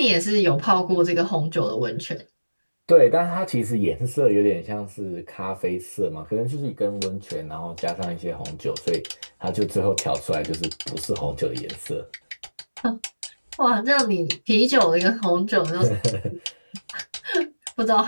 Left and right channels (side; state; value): both; inverted; correlation -1.00